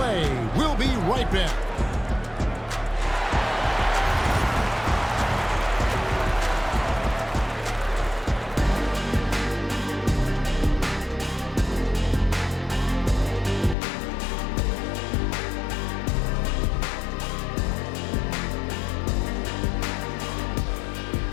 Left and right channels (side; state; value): right; drops out; at 13.8 s